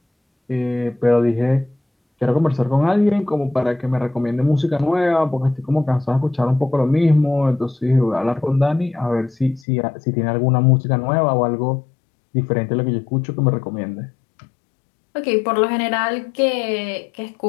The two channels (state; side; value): drops out; right; at 9.7 s